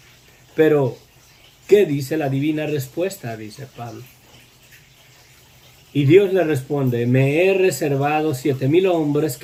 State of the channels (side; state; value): both; identical; correlation 1.00